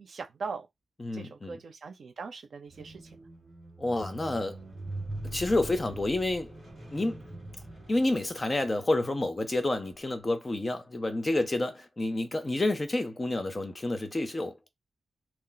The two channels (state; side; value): normal; both; correlation 0.95